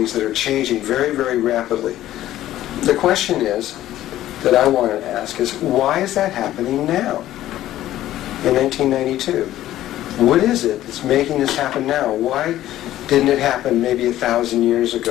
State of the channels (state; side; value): quieter; right; 13.7 dB